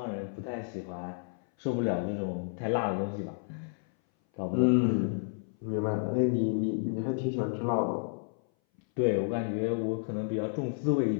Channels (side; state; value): right; silent; 57 dB below the other